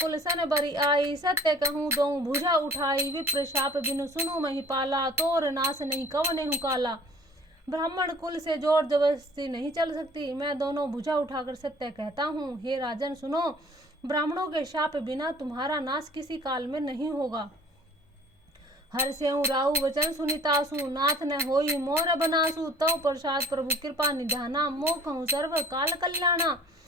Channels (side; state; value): both; normal; correlation 0.51